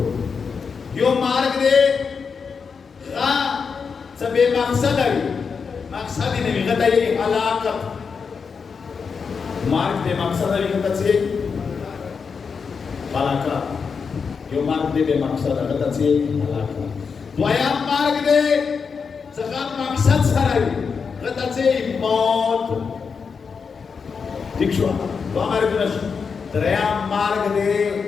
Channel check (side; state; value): right; quieter; 5.7 dB